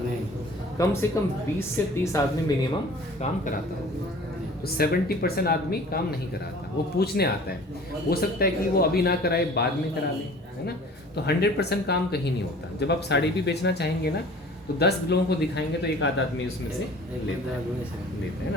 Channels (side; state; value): both; normal; correlation 0.46